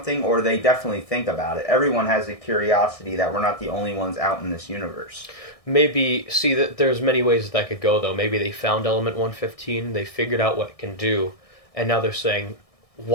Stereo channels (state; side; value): late; right; 1.6 ms